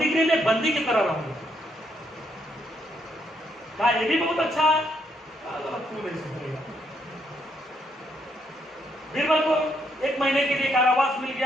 में बंदी की तरह रहोगे। क्या ये भी बहुत अच्छा है? क्यों नहीं सुनेगा। बीरबल को 1 महीने के लिए कारावास मिल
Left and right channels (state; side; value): normal; both; correlation 0.75